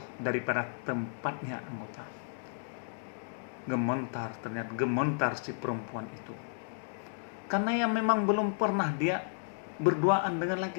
daripada tempatnya anggota. Ternyata gementar si perempuan itu. Karena yang memang belum pernah dia berduaan dengan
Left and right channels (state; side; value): silent; right; digital silence